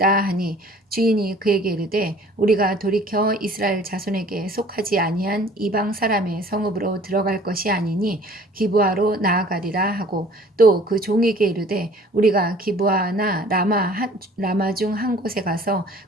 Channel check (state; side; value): normal; both; correlation 0.51